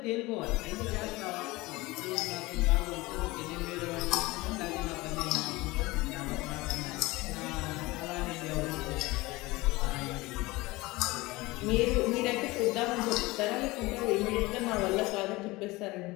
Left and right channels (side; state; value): right; quieter; 21.2 dB